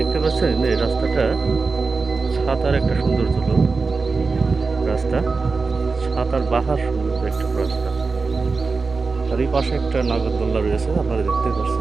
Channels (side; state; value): left; quieter; 4.3 dB